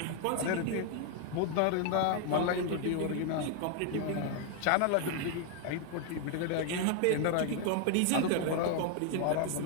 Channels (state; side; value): different; both; correlation 0.00